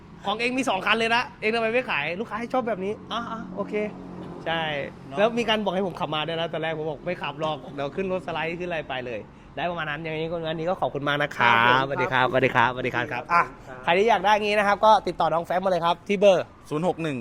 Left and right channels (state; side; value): identical; both; correlation 1.00